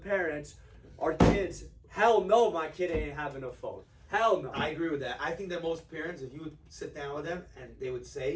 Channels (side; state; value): both; identical; correlation 1.00